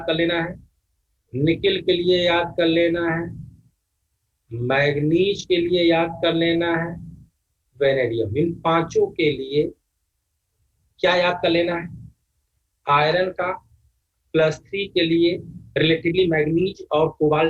कर लेना है, निकिल के लिए याद कर लेना है, मैग्नीज के लिए याद कर लेना है, वेनेडियम। इन 5 के लिए क्या याद कर लेना है? आयरन का +3 के लिए रिलेटिवली मैग्नीज और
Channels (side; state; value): both; identical; correlation 1.00